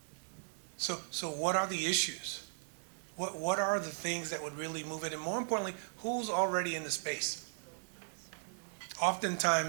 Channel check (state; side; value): silent; left; digital silence